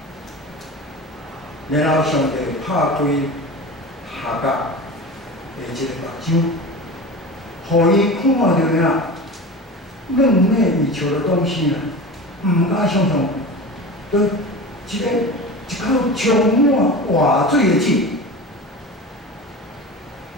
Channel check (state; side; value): normal; both; correlation 0.31